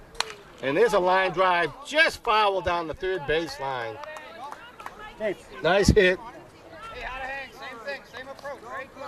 And there's a line drive just foul down the third base line. Hey, Nice hit. Hey, how to hang? Same thing, same approach, right?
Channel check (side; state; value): both; identical; correlation 1.00